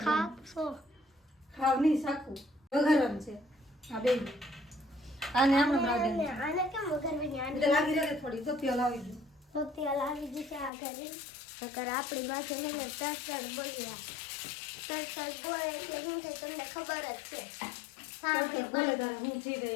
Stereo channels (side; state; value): right; drops out; at 10.7 s